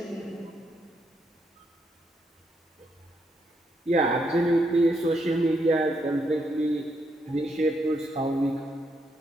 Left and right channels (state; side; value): normal; both; correlation 0.78